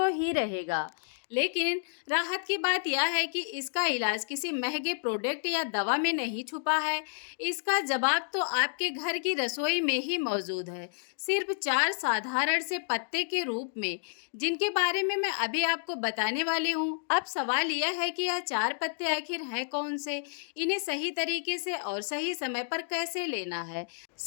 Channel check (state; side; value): silent; right; digital silence